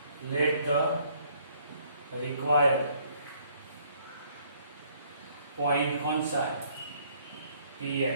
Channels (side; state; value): both; inverted; correlation -0.63